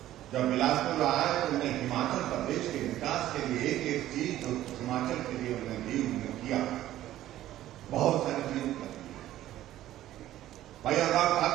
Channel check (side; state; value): left; quieter; 13.7 dB